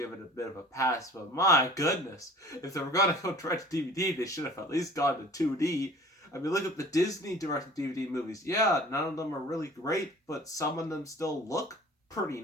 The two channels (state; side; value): normal; both; correlation 0.46